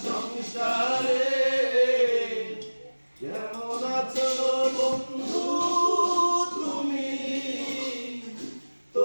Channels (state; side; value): inverted; both; correlation -1.00